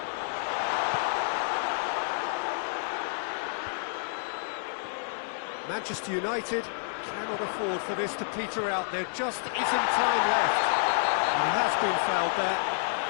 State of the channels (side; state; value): right; silent; digital silence